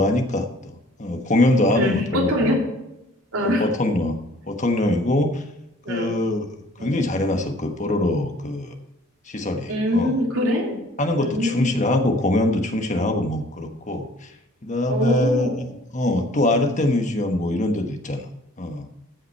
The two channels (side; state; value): both; normal; correlation 0.55